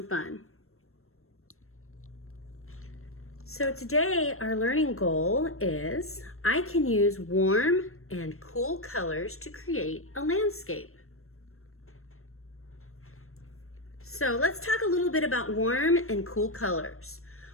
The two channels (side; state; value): right; late; 0.62 ms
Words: fun. So today our learning goal is I can use warm and cool colors to create a landscape. So let's talk a little bit about warm and cool colors.